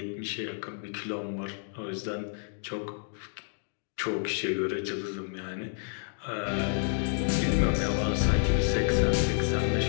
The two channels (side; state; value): right; silent; digital silence